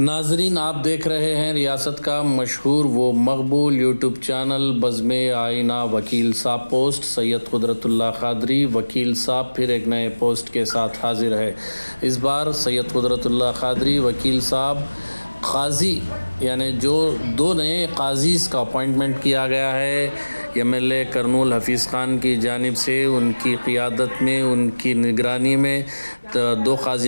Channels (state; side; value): inverted; both; correlation -1.00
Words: آپ دیکھ رہے ہیں ریاست کا مشہور و مقبول یوٹیوب چینل بزم آئینہ وکیل صاحب پوسٹ۔ سید قدرت اللہ قادری وکیل صاحب پھر ایک نئے پوسٹ کے ساتھ حاضر ہے۔ اس بار سید قدرت اللہ قادری وکیل صاحب قاضی یعنی جو 2 نئے قاضیز کا اپوائنٹمنٹ کیا گیا ہے MLA کرنول حفیظ خان کی جانب سے، ان کی قیادت میں، ان کی نگرانی میں 2